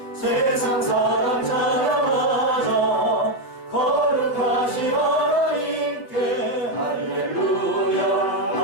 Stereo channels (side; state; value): right; late; 7.9 ms